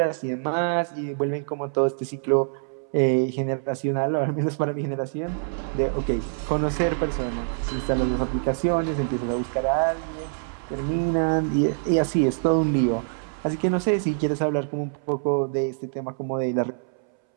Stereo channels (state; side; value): silent; left; 62 dB below the other